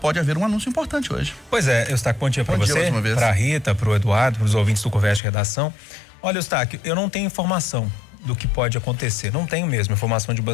haver um anúncio importante hoje. Pois é, Eustáquio, bom dia para você, para a Rita, para o Eduardo, para os ouvintes do Conversa de Redação. Olha, Eustáquio, eu não tenho informação do que pode acontecer, não tenho mesmo informação de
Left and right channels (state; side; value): drops out; right; at 5.2 s